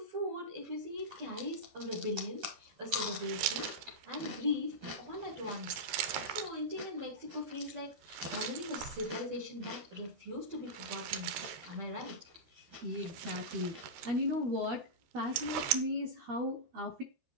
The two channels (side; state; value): left; late; 13 ms